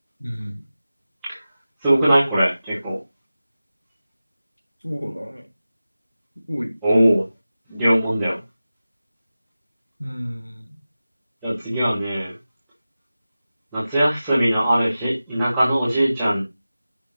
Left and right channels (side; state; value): both; inverted; correlation -0.95